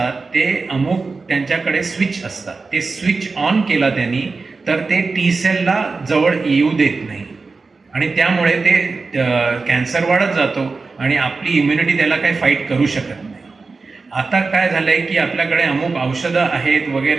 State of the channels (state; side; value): quieter; left; 4.1 dB